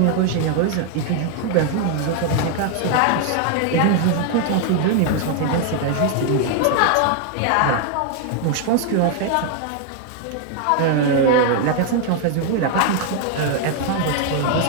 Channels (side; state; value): both; different; correlation 0.00